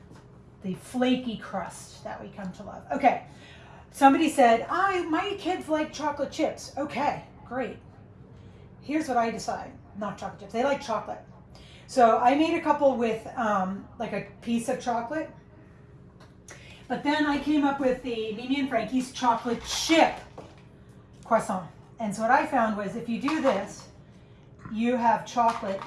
the flaky crust that we come to love. Okay, somebody said, my kids like chocolate chips. Okay, great. Here's what I decide. Not chocolate chips, they like chocolate. So I made a couple with like a piece of chocolate. But then I came up with the Mimi and Frankie's chocolate chip croissant. And so what I found was if you do this, you have chocolate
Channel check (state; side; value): identical; both; correlation 1.00